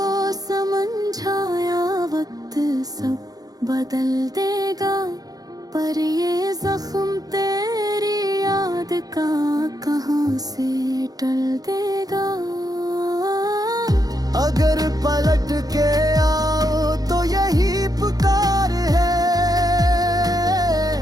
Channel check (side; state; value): left; late; 0.18 ms